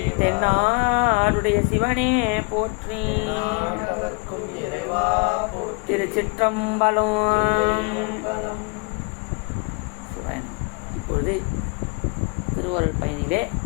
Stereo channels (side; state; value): right; quieter; 32.4 dB